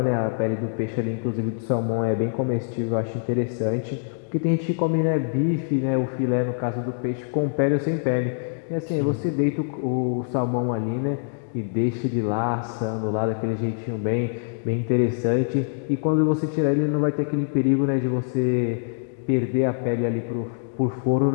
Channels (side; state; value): right; silent; digital silence